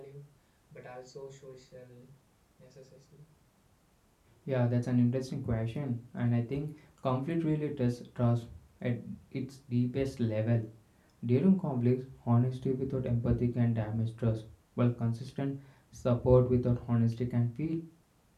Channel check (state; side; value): identical; both; correlation 1.00